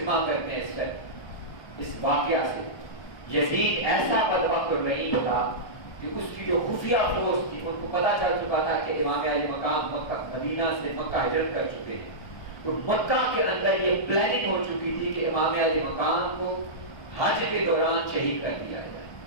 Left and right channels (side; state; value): right; late; 1.2 ms